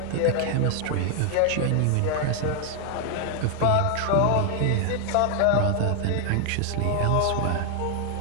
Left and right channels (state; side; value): different; both; correlation 0.00